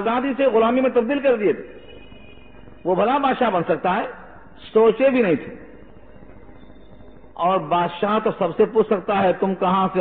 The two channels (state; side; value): identical; both; correlation 1.00